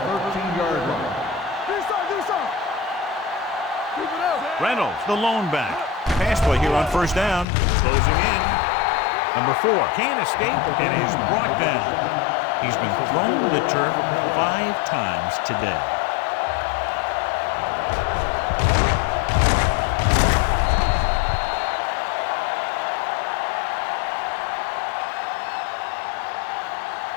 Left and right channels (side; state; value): right; drops out; at 7.5 s